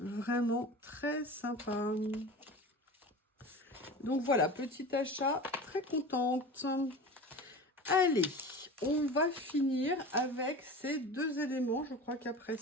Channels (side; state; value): both; normal; correlation 0.34